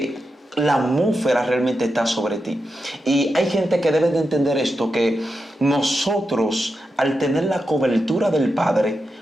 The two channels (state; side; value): normal; both; correlation 0.88